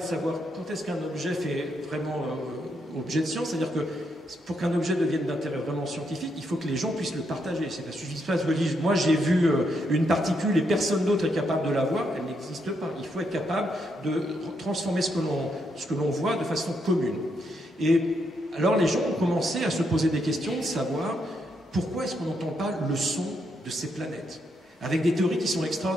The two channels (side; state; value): both; normal; correlation 0.78